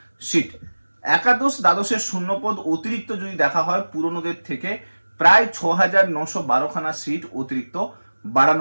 সিট। একাদশ দ্বাদশের শূন্যপদ অতিরিক্ত যদি দেখা হয় পুরনোদের থেকে প্রায় 6,912খানা সিট অতিরিক্ত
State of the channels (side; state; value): both; inverted; correlation -1.00